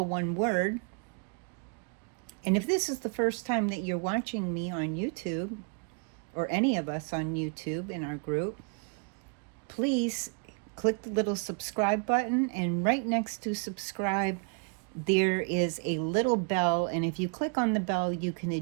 one word. And if this is the first time that you're watching me on YouTube, or any of us on YouTube in our group, please click the little subscribe button, and right next to subscribe there is a little bell, and if you click on the bell you can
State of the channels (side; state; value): left; quieter; 38.2 dB